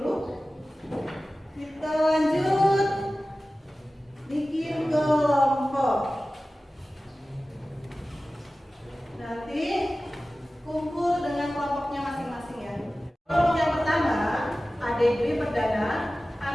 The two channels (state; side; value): normal; both; correlation 0.96